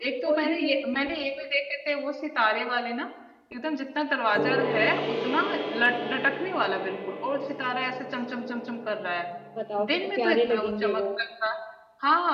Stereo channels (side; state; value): both; identical; correlation 1.00